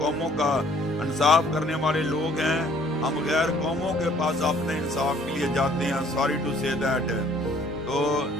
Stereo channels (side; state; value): both; normal; correlation 0.59